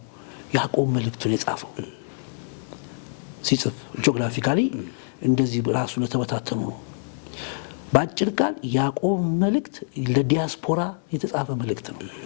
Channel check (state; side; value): silent; right; 62 dB below the other